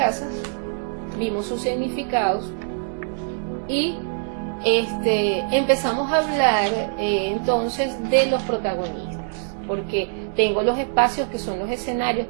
vimos sus significados y empezamos a hablar entonces de los protagonistas, porque tengo los espacios que son los escenarios,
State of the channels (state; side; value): silent; left; digital silence